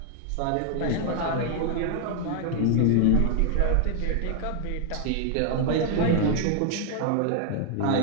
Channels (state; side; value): different; both; correlation 0.00